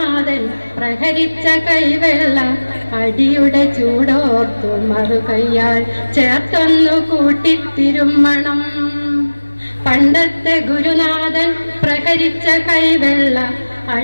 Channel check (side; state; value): both; inverted; correlation -1.00